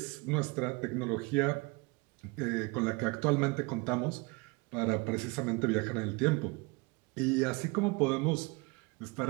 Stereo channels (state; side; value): quieter; left; 27.2 dB